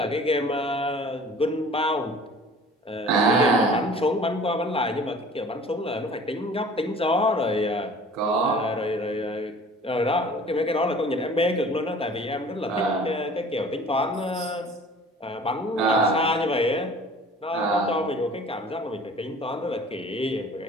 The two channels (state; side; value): normal; both; correlation 0.47